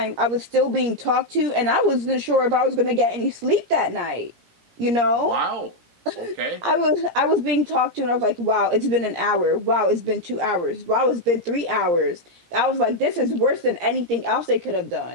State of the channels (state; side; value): late; left; 17 ms